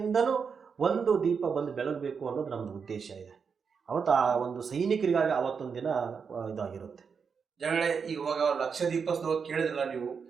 ಒಂದು ದೀಪ ಬಂದು ಬೆಳಗಬೇಕು ಅನ್ನೋದು ನಮ್ಮದು ಉದ್ದೇಶ ಇದೆ. ಅವತ್ತು ಆ ಒಂದು ಸೈನಿಕರಿಗಾಗಿ ಅವತ್ತೊಂದು ದಿನ ಇದಾಗಿರುತ್ತೆ. ಜನಗಳೇ, ಇವಾಗ ಲಕ್ಷ ದೀಪೋತ್ಸವ ಕೇಳಿದ್ರಲ್ಲ ನೀವು,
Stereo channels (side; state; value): left; quieter; 6.0 dB